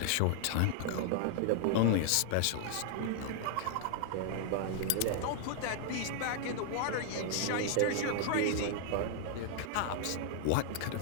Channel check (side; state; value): both; different; correlation -0.01